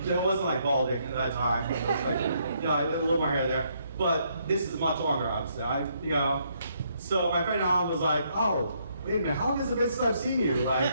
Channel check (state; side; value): inverted; both; correlation -0.72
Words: wasn't like balding at that time. It was like, I had a little more hair there. But this is much longer, obviously. So my friend Alan was like, "Oh, wait a minute, how long has it been since I've seen you?" Like,